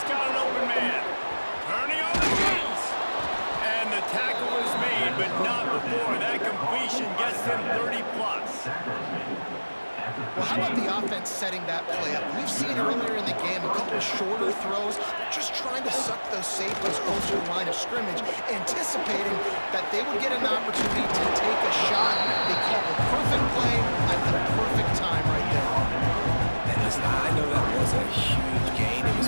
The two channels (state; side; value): inverted; both; correlation -1.00